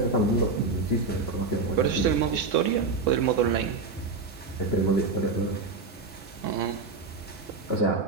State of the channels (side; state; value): left; quieter; 4.1 dB